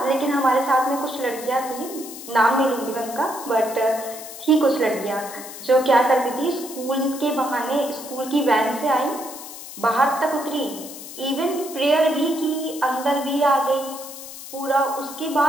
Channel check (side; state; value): left; noise; hiss, 13 dB below the sound